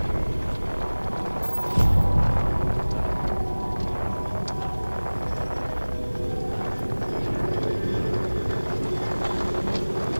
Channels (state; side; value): inverted; both; correlation -1.00